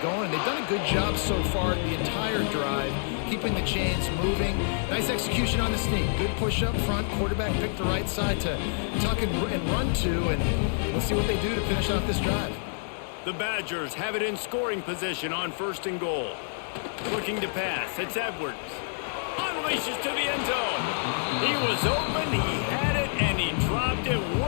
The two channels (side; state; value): right; silent; digital silence